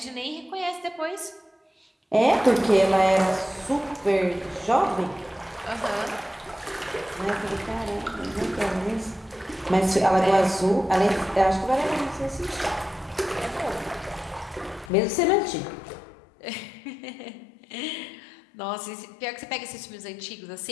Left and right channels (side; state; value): right; drops out; at 14.9 s